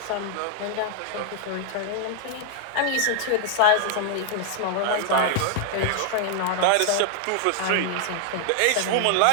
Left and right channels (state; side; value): different; both; correlation -0.01